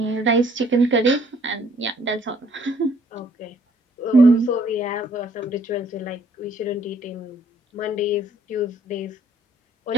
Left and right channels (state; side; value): normal; both; correlation 0.63